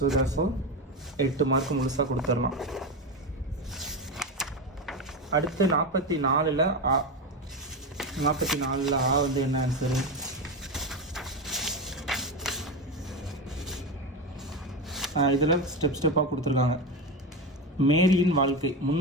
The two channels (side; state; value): both; normal; correlation 0.17